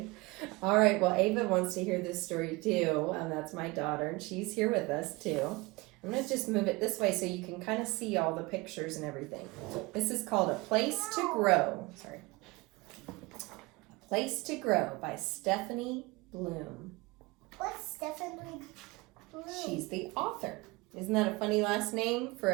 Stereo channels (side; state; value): left; quieter; 23.8 dB